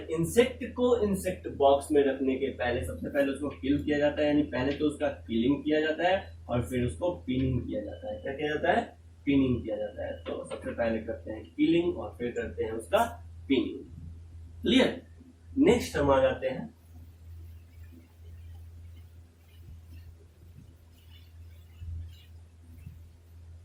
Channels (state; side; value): identical; both; correlation 1.00